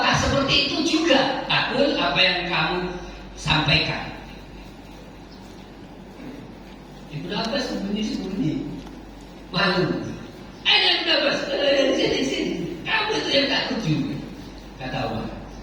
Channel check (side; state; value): both; identical; correlation 1.00